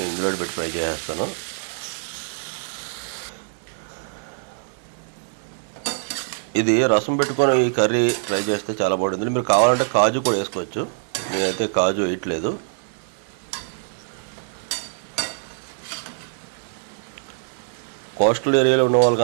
ఇందులో పెట్టి ఫ్రై చేసేస్తాను. ఇది రసం పెట్టుకొని ఈ కర్రీ ఫ్రై చేస్తే చాలా బాగుంటుంది. మీరు కావాలంటే కాజు కూడా వేసుకోవచ్చు, నేనైతే కాజు వేయట్లేదు. కోస్టల్ ఏరియాలో ఉన్న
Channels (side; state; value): left; silent; 55 dB below the other